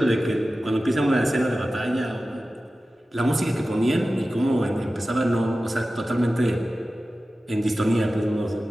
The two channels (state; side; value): normal; both; correlation 0.95